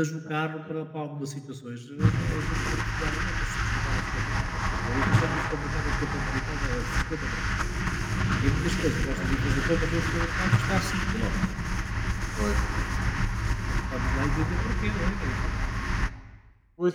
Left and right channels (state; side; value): identical; both; correlation 1.00